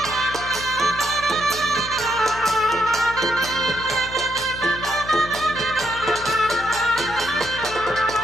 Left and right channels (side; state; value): left; noise; hum, 13 dB below the sound